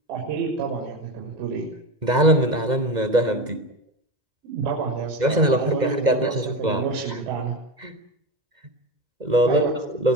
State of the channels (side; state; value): left; late; 2.0 ms